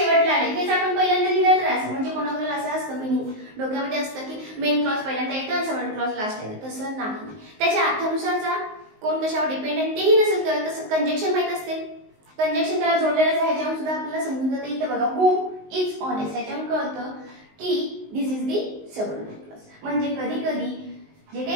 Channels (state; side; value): late; left; 19 ms